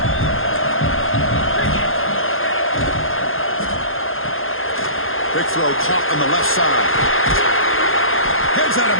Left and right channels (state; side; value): late; right; 0.60 ms